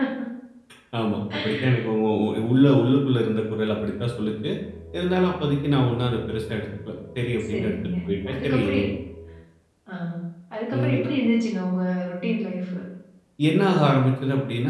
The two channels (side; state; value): both; identical; correlation 1.00